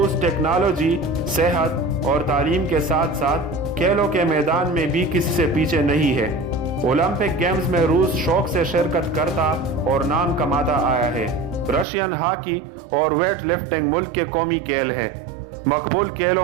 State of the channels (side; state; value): left; drops out; at 11.9 s